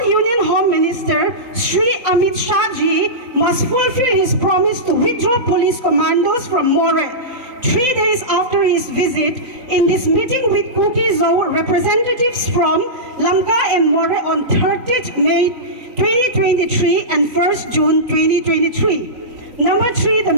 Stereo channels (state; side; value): late; left; 3.9 ms